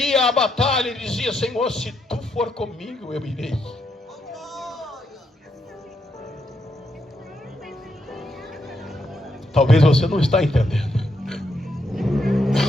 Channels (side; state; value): both; normal; correlation 0.79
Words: ia à batalha, ele dizia: Senhor, se tu for comigo, eu irei. Talvez você não está entendendo.